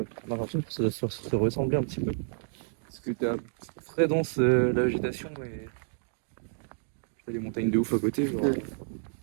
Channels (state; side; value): silent; left; digital silence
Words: On a l'impression que ça doit se ressembler un petit peu. Parce que t'as très dense la végétation et t'as des montagnes de ouf à côté. Genre.